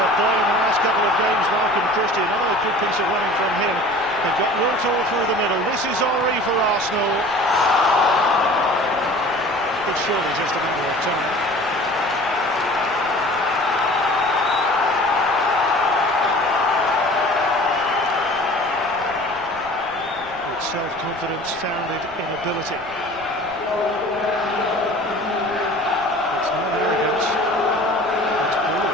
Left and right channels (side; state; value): right; noise; rumble, 22 dB below the sound